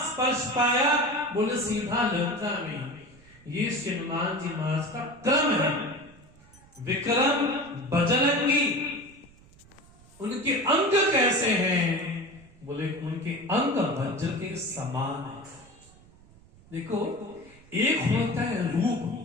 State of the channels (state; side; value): noise; right; rumble, 25 dB below the sound